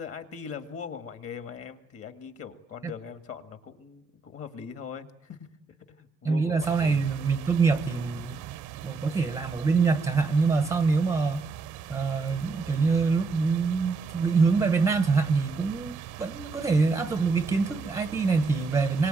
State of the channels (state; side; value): quieter; left; 4.2 dB